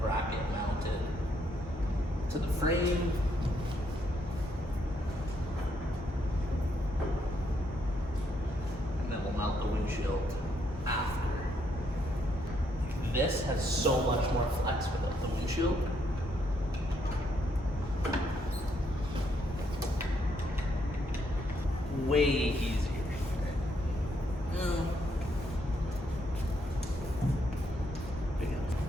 bracket mounted to the frame. Mount the windshield after. This has so much more flex without the windshield. Way easier.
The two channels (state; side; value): normal; both; correlation 0.74